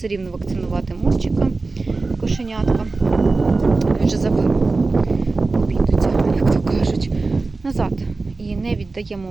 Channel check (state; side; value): quieter; left; 3.7 dB